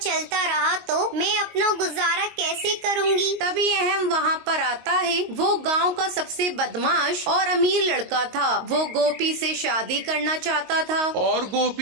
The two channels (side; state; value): left; late; 22 ms